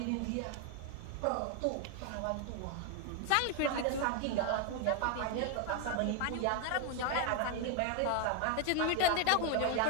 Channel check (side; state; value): both; different; correlation 0.01